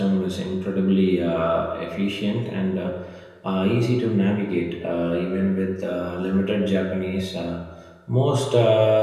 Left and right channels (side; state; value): both; identical; correlation 1.00